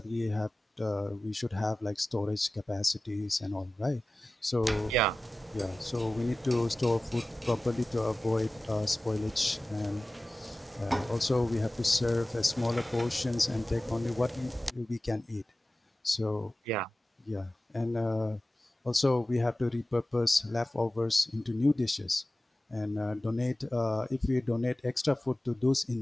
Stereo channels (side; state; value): both; normal; correlation 0.96